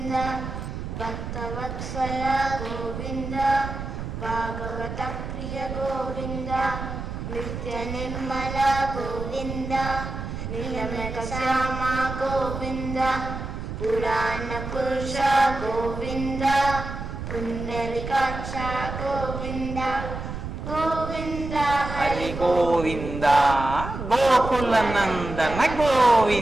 భక్తవత్సల గోవింద భాగవత ప్రియ గోవింద నిత్య నిర్మల గోవింద నీలమేఘ శ్యామ గోవింద పురాణ పురుష గోవింద పుండరీకాక్ష గోవింద గోవింద హరి గోవింద గోకుల నందన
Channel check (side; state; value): right; noise; rumble, 7 dB below the sound